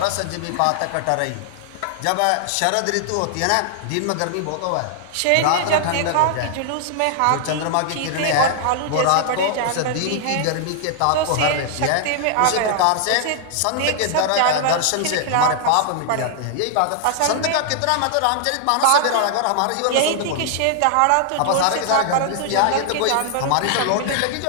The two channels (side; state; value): both; different; correlation 0.00